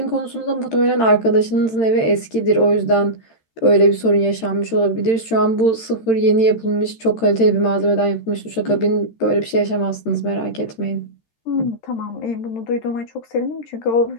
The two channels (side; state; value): right; late; 13 ms